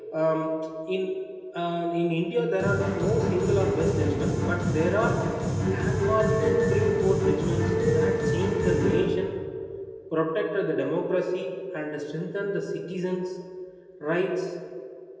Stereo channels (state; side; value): identical; both; correlation 1.00